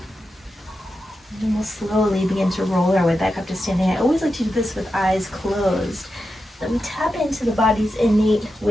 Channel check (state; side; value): normal; both; correlation 0.89